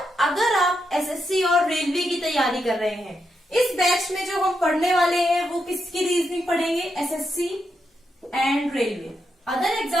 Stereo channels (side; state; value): both; normal; correlation 0.83